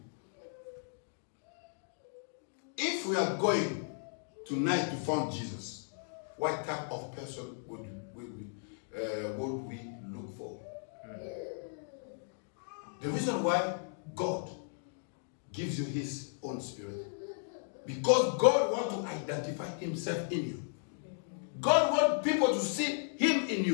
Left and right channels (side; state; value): right; silent; digital silence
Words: if we are going tonight to find Jesus, what type of person would we look for? The reason why God gives you his own spirit, because God wants to identify himself in you. God wants people to see him in